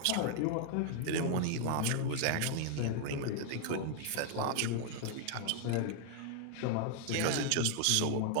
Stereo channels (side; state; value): both; different; correlation 0.00